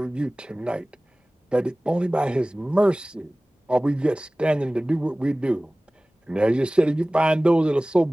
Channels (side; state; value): both; normal; correlation 0.98